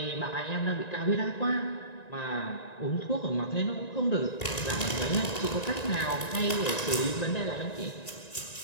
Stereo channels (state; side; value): late; right; 1.9 ms